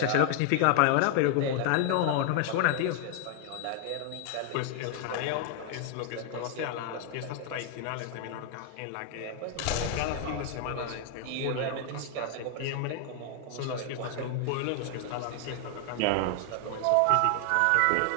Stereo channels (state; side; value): different; both; correlation 0.00